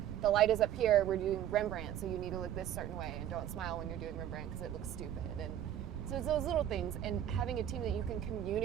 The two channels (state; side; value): quieter; left; 11.0 dB